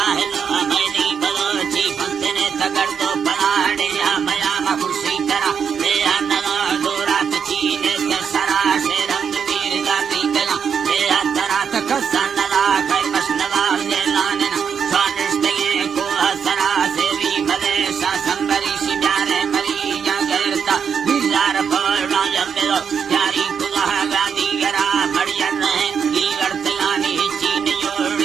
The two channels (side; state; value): left; quieter; 7.0 dB